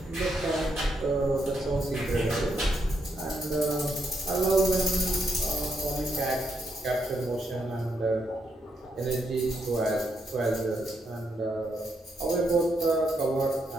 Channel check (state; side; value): normal; both; correlation 0.78